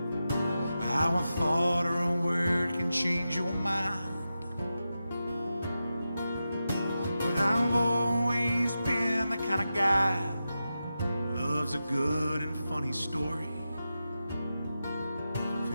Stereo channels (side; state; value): both; inverted; correlation -0.91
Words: how a thought or a word can change your mind. But I've always been the kind of guy loves a good and funny story. If